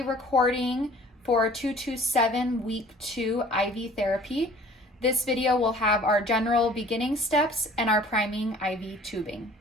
recording for 227 week 2 IV therapy. This video will have our general beginning steps and our priming IV tubing.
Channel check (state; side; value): normal; both; correlation 0.50